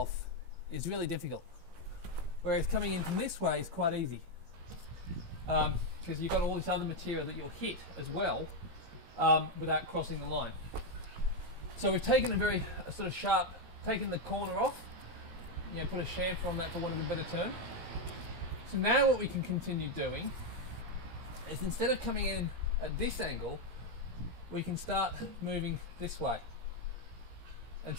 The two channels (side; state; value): left; late; 17 ms